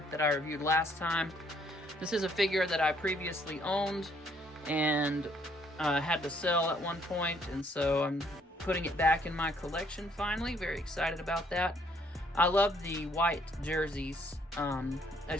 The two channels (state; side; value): normal; both; correlation 0.67